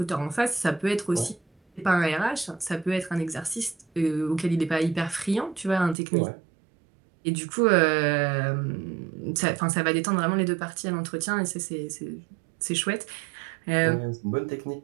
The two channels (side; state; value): left; drops out; at 6.0 s